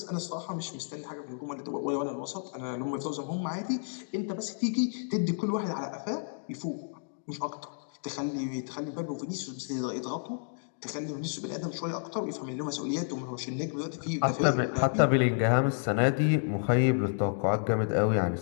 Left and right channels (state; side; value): silent; right; digital silence